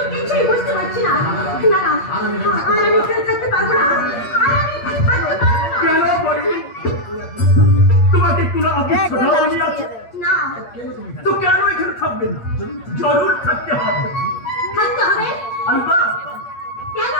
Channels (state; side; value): late; right; 8.5 ms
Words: কিছুই বুঝতে পারছি না না না আর আমি এখানে থাকতে পারবো না আর আমি থাকতে পারবো না কেন বলি তোমাকে কোনো অফিস ছোটাওনি আছে না তো কেন এখানে থাকবে না জরুর থাকতে হবে থাকতে হবে আলবাত কেন